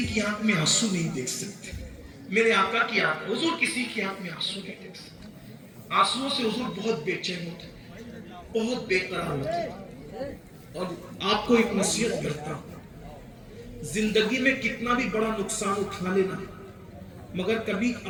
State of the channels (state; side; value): identical; both; correlation 1.00